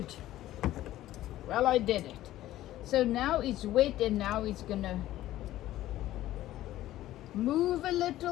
Well, I did it. So now it's wet, and now it's gonna move a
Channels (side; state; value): right; quieter; 14.5 dB